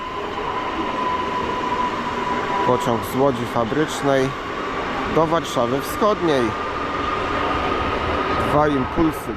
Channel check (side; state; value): both; identical; correlation 1.00